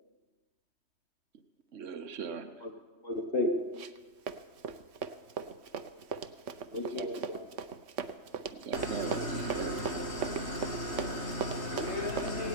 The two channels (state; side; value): late; left; 3.2 ms